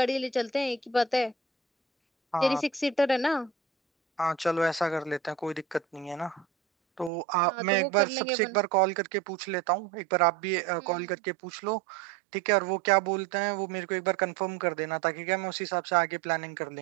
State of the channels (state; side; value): drops out; left; at 7.1 s